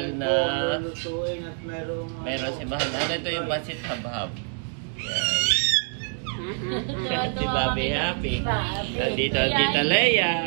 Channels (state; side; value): silent; left; 55 dB below the other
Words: na... Meron si Mahal na... Ano ito yung pansit habhab. Yan. Si Bobby happy. Nandito ang Tita Leia.